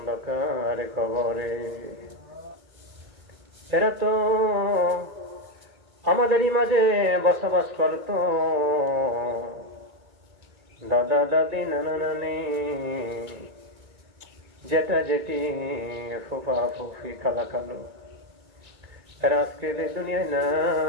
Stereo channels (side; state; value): left; late; 2.3 ms